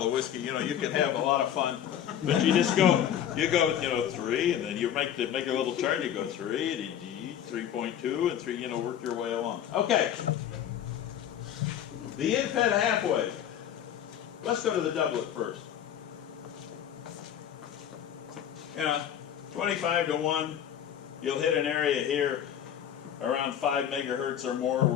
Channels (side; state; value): right; quieter; 9.9 dB